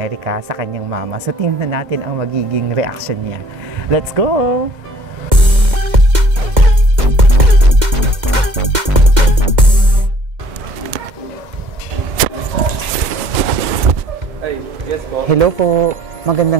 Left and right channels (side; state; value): left; late; 2.1 ms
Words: sa kanyang mama. So tingnan natin ang magiging reaction niya. Let's go! Hello po,